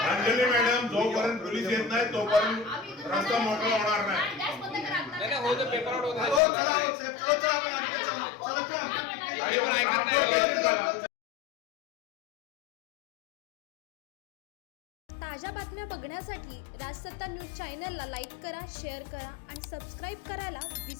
मॅडम, जोपर्यंत पोलीस येत नाही तोपर्यंत रस्ता मोकळा होणार नाही. हो, चला, हो, साहेब, चला, आपण आणखी चला, आणि मग ट्रान्सपोर्ट झाला. ताज्या बातम्या बघण्यासाठी राजसत्ता न्यूज चॅनलला लाईक करा, शेअर करा आणि सबस्क्राईब करायला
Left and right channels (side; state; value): right; drops out; at 6.4 s